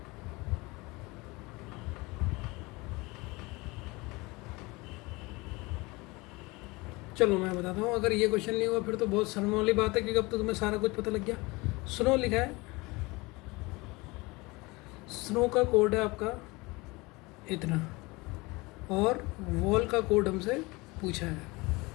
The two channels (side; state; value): right; quieter; 23.9 dB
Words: चलो मैं बताता हूँ, अगर ये क्वेश्चन नहीं हुआ फिर तो बहुत शर्म वाली बात है, क्योंकि अब तो तुम्हें सारा कुछ पता लग गया। स्नो लिखा है, स्नो का कोड है आपका इतना, और वॉल का कोड हमसे पूछा है।